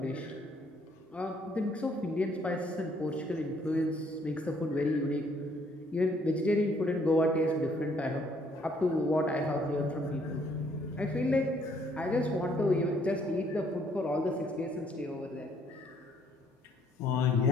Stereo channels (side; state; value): both; normal; correlation 0.66